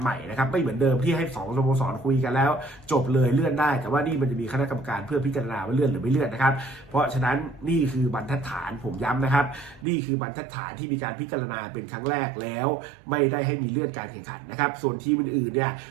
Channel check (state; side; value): drops out; left; at 9.9 s